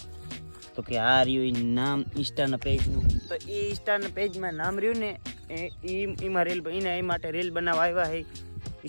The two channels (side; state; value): both; inverted; correlation -1.00